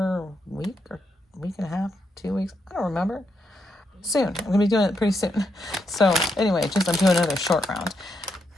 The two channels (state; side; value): normal; both; correlation 0.80